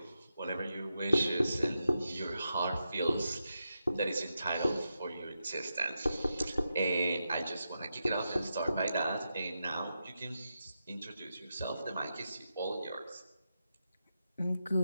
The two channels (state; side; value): inverted; both; correlation -0.87